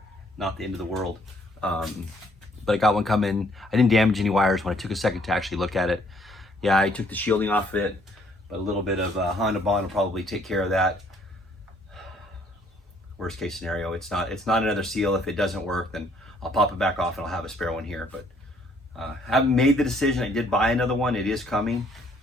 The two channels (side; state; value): both; normal; correlation 0.64